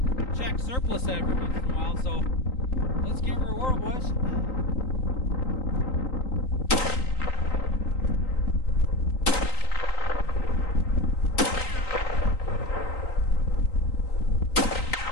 Czech surplus every once in a while. So let's give her a whirl, boys.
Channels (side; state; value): right; late; 3.9 ms